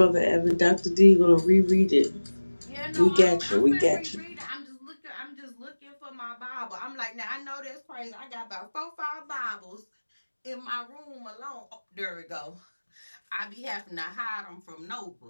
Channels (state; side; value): inverted; both; correlation -1.00